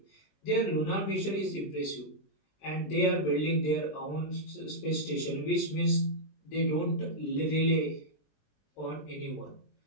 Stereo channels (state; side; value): late; right; 20 ms